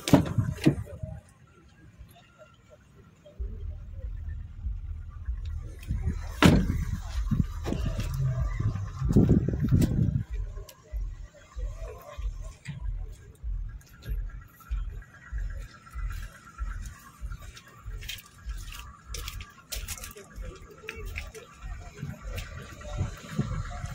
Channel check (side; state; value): both; identical; correlation 1.00